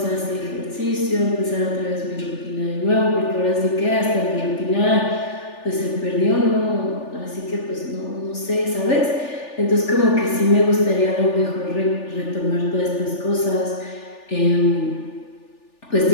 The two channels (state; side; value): late; right; 3.4 ms